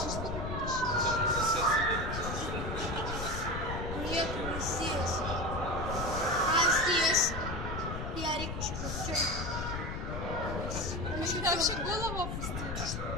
быть. Нет, не здесь. А здесь? Ярик еще Он сюда вообще голову опустил.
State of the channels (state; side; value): noise; left; rumble, 5 dB below the sound